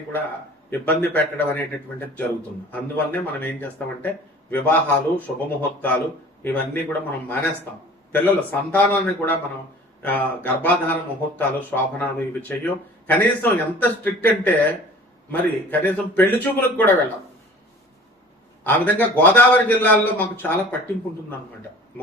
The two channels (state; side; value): normal; both; correlation 0.45